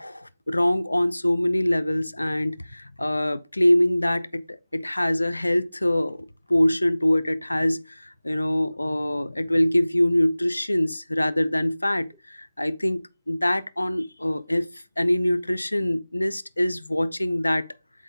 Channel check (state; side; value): inverted; both; correlation -0.98